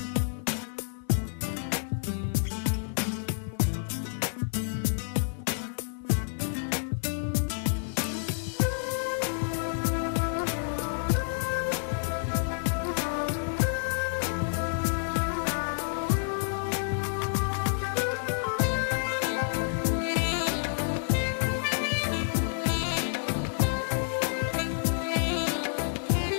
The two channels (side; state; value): right; silent; digital silence